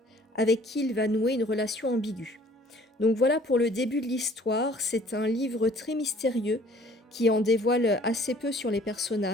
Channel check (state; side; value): normal; both; correlation 0.55